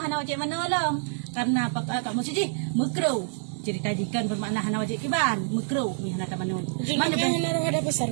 wajib mana lam. Karena kamu siji mekru. Cerita jikan bermakna hana wajib kiban mekru ni hana tamanun. Mana hana ada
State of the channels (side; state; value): left; silent; digital silence